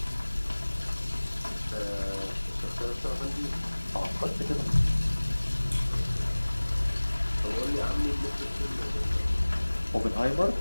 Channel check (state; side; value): inverted; both; correlation -1.00